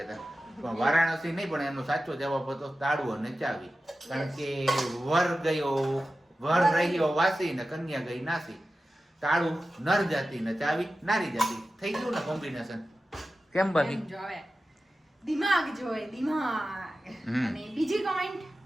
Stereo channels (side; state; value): both; normal; correlation 0.94